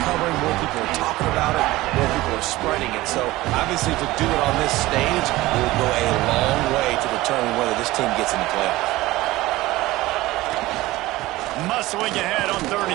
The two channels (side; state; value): left; quieter; 18.3 dB